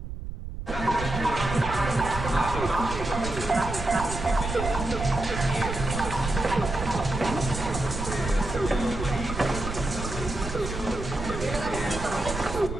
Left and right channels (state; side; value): noise; right; rumble, 7 dB below the sound